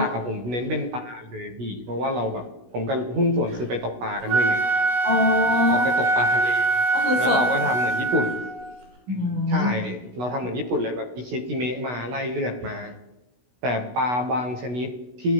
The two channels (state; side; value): late; left; 16 ms